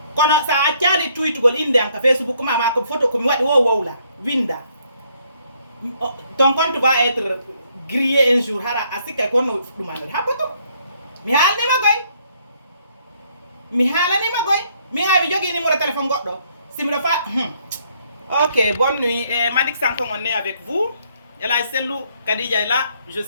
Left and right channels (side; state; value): both; inverted; correlation -0.68